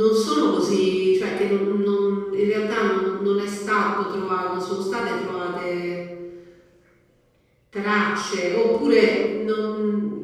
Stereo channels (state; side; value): identical; both; correlation 1.00